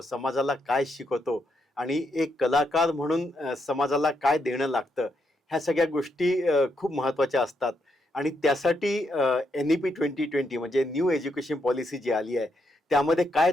समाजाला काय शिकवतो आणि एक कलाकार म्हणून समाजाला काय देणं लागतं, ह्या सगळ्या गोष्टी खूप महत्त्वाच्या असतात. आणि त्यासाठी NEP 2020 म्हणजे न्यू एज्युकेशन पॉलिसी जी आली आहे त्यामध्ये काय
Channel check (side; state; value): both; normal; correlation 0.79